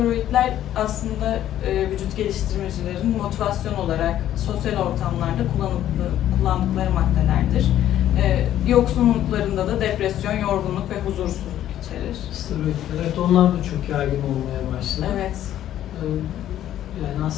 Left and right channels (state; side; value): quieter; right; 11.9 dB